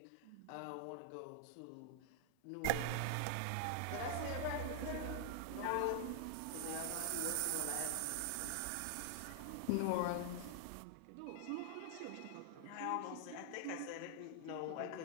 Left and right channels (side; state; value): both; different; correlation -0.01